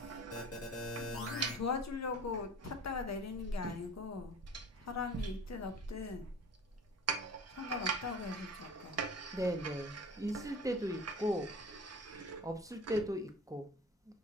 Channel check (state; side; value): normal; both; correlation 0.40